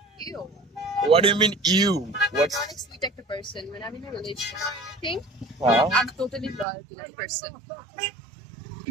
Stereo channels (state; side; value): drops out; left; at 6.7 s